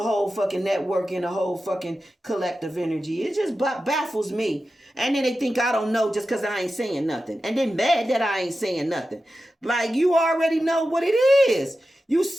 whole fucking network and the whole fucking collective energy. It just baffles me. And then they think I don't know just because I ain't saying nothing. And then mad that I ain't saying nothing. Like, you already know what it is. You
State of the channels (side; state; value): both; normal; correlation 0.92